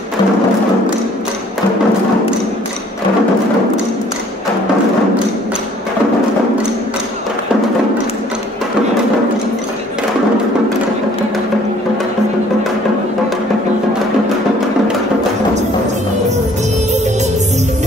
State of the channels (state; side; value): normal; both; correlation 0.57